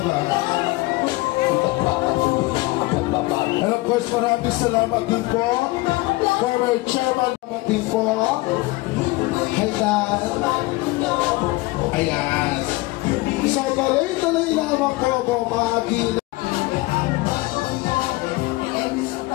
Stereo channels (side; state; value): right; quieter; 21.6 dB